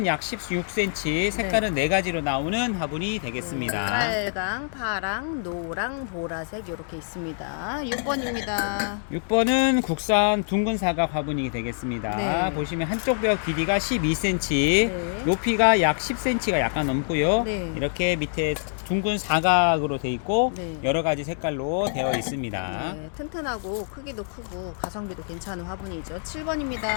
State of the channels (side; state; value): right; silent; digital silence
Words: 약 16cm, 색깔은 네 가지로 나오는 화분이 되겠습니다. 빨강, 파랑, 노랑, 보라색 이렇게 있습니다. 6번입니다. 6번은 국산 둥근 사각 화분이 되겠습니다. 네. 보시면 한쪽 벽 길이가 12cm, 네. 높이가 약 10cm가 약간 넘고요. 네. 이렇게 밑에 둥근 사각으로 되어 있고 네. 여러 가지 색깔로 되어 있습니다. 네, 튼튼하고 크기도 크고 가성비도 괜찮은 화분이죠.